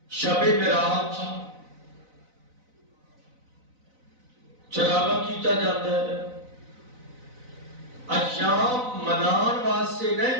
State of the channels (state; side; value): late; left; 4.0 ms